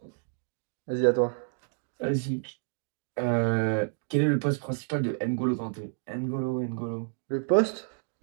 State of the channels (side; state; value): left; silent; digital silence